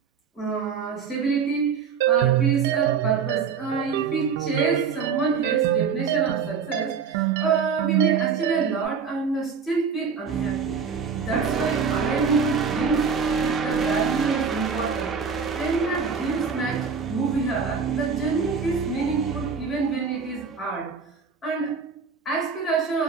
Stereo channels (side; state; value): left; quieter; 6.0 dB